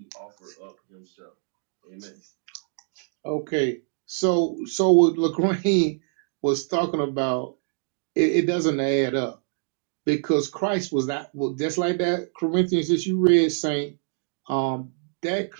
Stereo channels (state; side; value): silent; left; 60 dB below the other